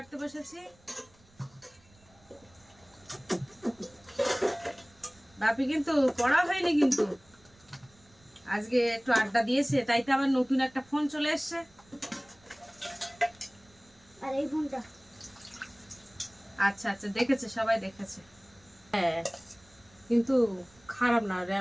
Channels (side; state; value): right; noise; rumble, 29 dB below the sound